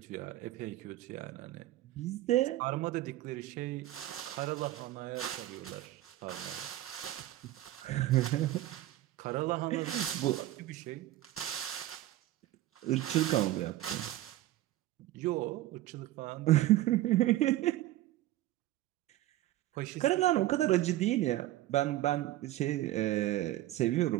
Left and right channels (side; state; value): left; quieter; 15.1 dB